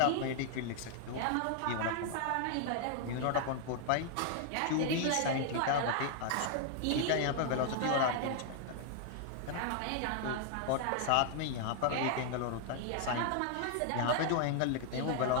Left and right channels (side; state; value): both; different; correlation 0.00